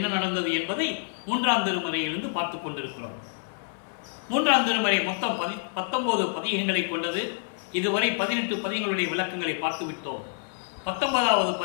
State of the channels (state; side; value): silent; right; 60 dB below the other